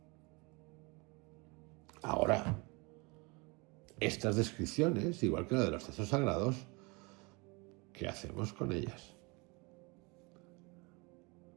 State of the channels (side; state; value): left; quieter; 28.2 dB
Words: Ahora, estas descripciones, igual que la de los textos sagrados, ¿qué hacemos con ellas?